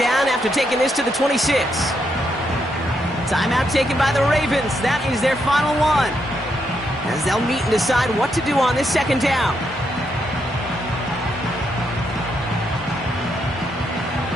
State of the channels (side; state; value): both; normal; correlation 0.79